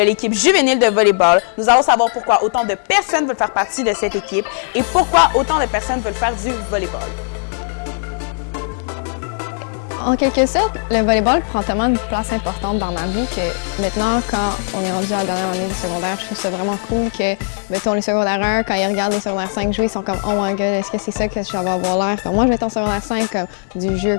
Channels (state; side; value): silent; right; 67 dB below the other